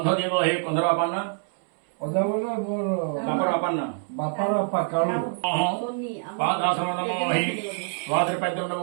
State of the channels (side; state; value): left; silent; 61 dB below the other